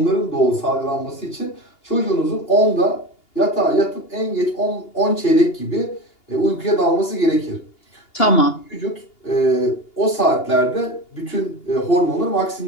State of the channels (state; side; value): late; right; 2.8 ms